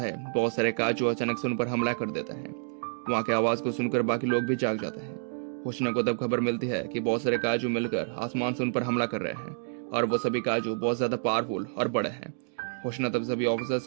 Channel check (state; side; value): silent; left; digital silence